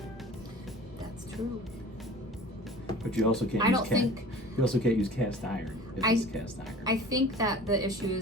That's true. But you also can't you also can't use cast iron. It's cast iron. I think that the issue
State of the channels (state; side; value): normal; both; correlation 0.43